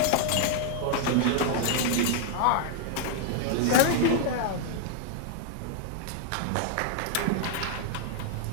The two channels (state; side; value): different; both; correlation 0.00